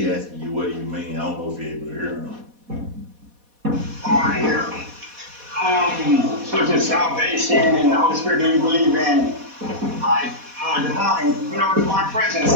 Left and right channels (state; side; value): late; left; 4.1 ms